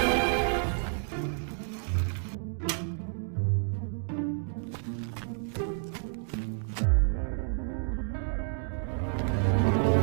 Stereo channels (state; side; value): silent; left; 58 dB below the other